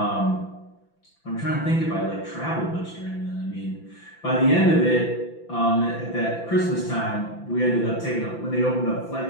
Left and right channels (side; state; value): right; late; 5.9 ms